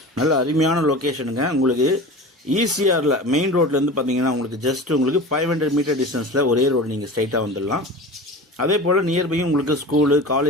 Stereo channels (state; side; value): normal; both; correlation 0.34